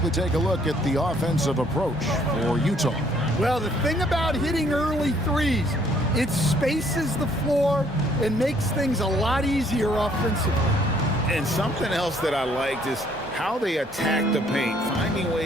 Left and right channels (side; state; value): both; normal; correlation 0.64